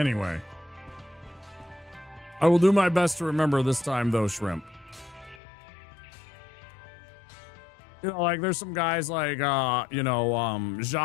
I will do my best to remember this time, though, Shrimp. You know, like, there's some guys like,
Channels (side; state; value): right; drops out; at 5.4 s